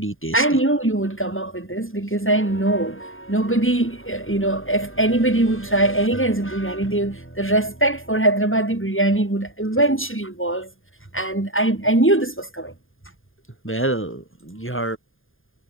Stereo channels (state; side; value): late; right; 0.59 ms